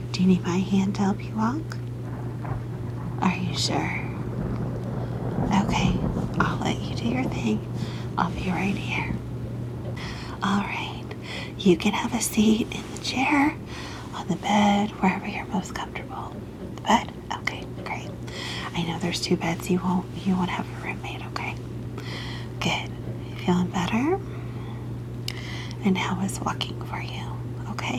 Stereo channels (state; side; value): identical; both; correlation 1.00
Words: Do you need my hand to help you walk? Are you sure? Okay, I'll let you do your thing. I'll be right here. All right, you can have a seat in the chair, on the bed, wherever you're most comfortable. The bed? Okay, great. I know there's 2 beds. You won't have a roommate, okay? Good. Feeling better? And how is walking for you?